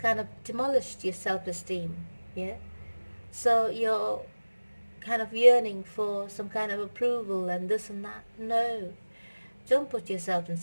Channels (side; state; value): both; inverted; correlation -1.00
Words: of demolished your self-esteem. Yeah? So you're kind of yearning for some kind of approval and this and that. No. Don't put yourself in